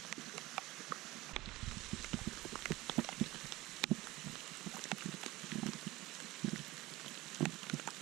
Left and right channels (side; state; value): left; quieter; 19.1 dB